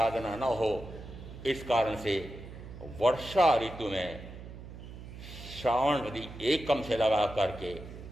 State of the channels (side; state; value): right; noise; hum, 13 dB below the sound